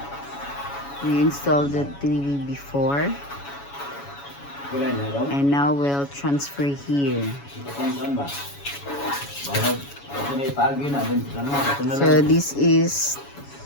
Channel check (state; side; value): late; right; 7.1 ms